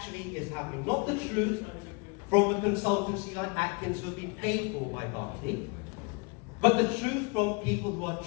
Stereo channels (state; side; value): quieter; right; 30.7 dB